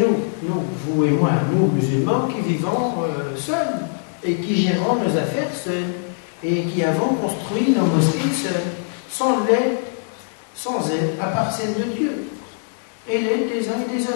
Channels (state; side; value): silent; right; digital silence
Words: vous et moi, nous, musulmans, qui vivons seuls et qui gérons nos affaires seuls et qui avons construit nos mosquées seuls, sans l'aide, à part celle de Dieu, et l'aide des uns et des